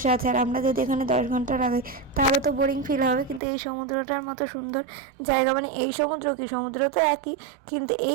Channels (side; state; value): left; drops out; at 3.4 s